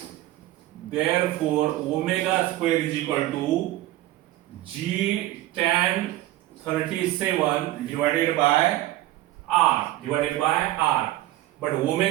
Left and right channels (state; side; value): quieter; left; 15.8 dB